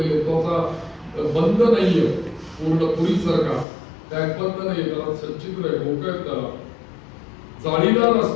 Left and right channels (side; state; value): right; drops out; at 3.7 s